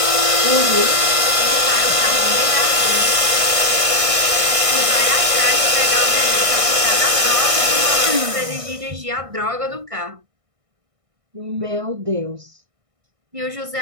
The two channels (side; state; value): left; late; 1.6 ms